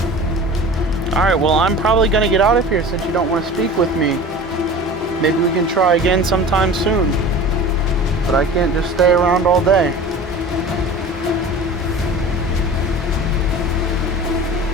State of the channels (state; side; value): normal; both; correlation 0.37